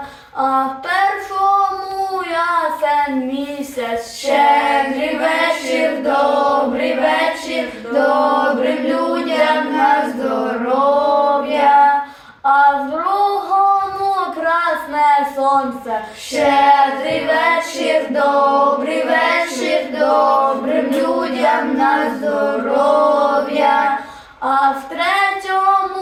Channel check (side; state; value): both; identical; correlation 1.00